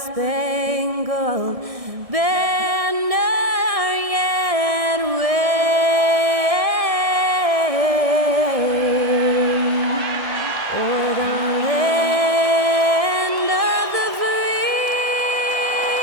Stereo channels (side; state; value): left; late; 1.6 ms